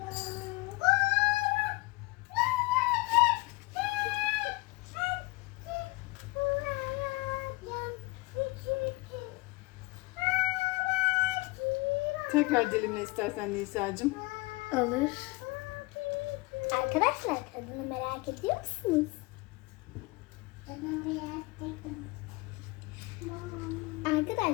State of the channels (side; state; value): right; quieter; 23.6 dB